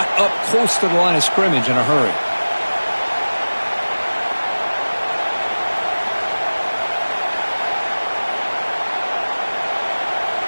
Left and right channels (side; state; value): both; inverted; correlation -1.00